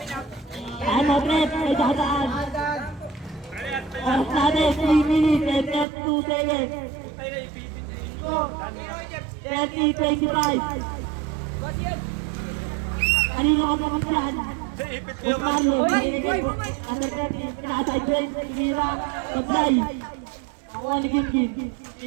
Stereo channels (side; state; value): left; drops out; at 5.9 s